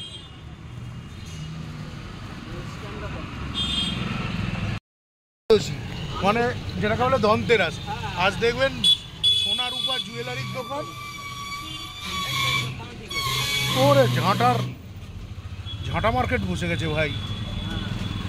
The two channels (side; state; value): both; identical; correlation 1.00